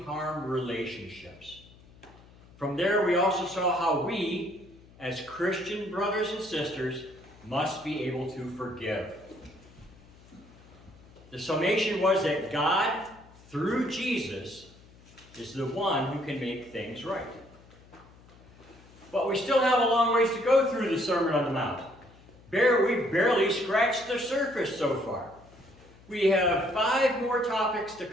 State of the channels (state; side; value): noise; left; hum, 24 dB below the sound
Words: relationships. From there, we also saw how we, as Christian brothers and sisters, must be able to forgive. The summation was that God, through Jesus, is the one who can make things right. But we still have a long ways to go through the Sermon on the Mount. We've barely scratched the surface so far. We have 5 more topics to